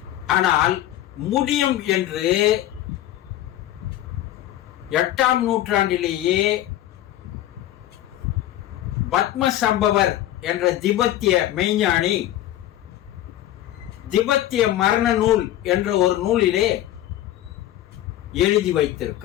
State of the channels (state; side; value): quieter; right; 13.3 dB